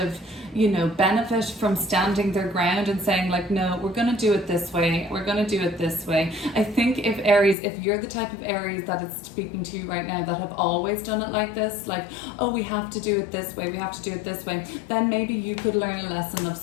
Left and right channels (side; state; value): right; drops out; at 7.6 s